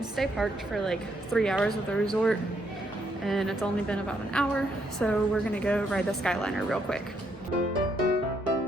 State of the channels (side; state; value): both; normal; correlation 0.74